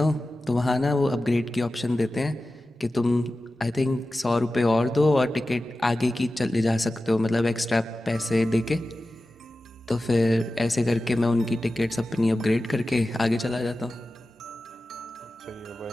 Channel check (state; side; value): normal; both; correlation 0.94